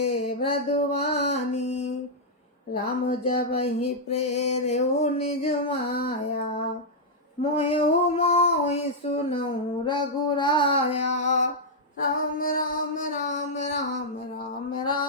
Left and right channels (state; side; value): normal; both; correlation -0.06